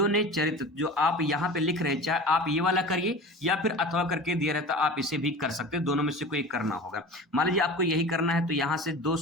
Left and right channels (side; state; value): both; normal; correlation 0.36